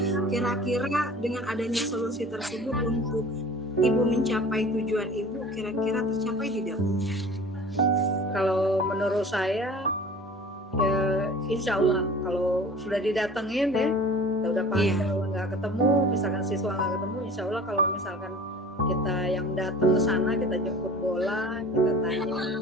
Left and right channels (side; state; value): both; normal; correlation 0.42